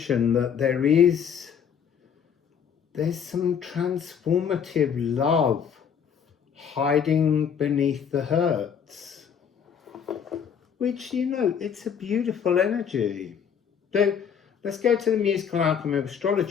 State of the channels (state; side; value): quieter; right; 7.5 dB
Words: that there's some transformative love hiding beneath the hurts, which, you know, it's a beautiful energy. So let's go to the musical Alchemy of